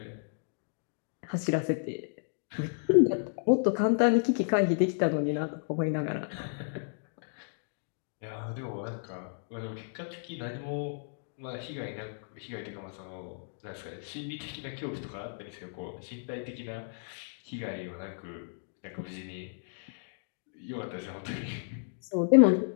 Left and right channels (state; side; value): silent; right; digital silence